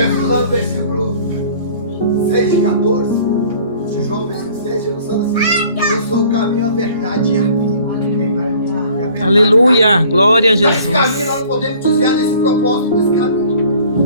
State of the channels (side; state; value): both; inverted; correlation -0.52